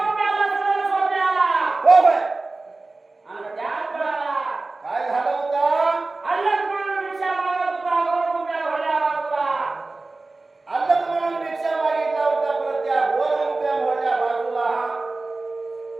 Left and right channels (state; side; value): quieter; left; 3.3 dB